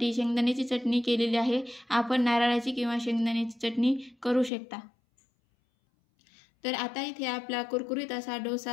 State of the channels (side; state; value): right; drops out; at 4.5 s